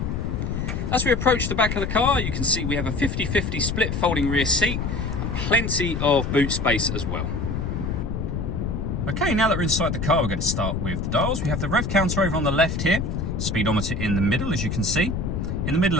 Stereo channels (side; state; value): left; noise; rumble, 2 dB below the sound